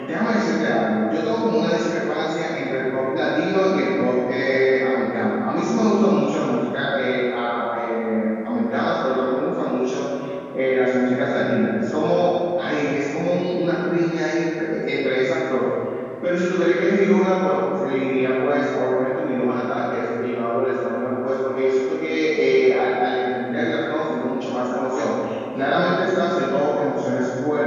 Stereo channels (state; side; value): identical; both; correlation 1.00